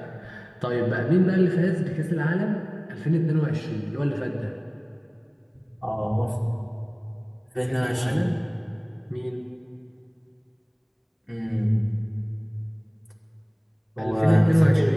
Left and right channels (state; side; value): identical; both; correlation 1.00